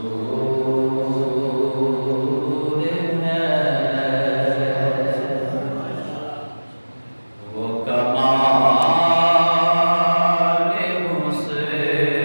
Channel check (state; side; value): inverted; both; correlation -1.00